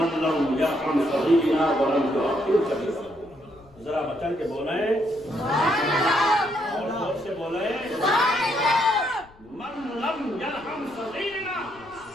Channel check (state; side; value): noise; left; rumble, 26 dB below the sound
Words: لم يرحم صغيرنا ولم يعقل ذرا بچن کے بولیں اور زور سے بولیں من لم یرحم صغیرنا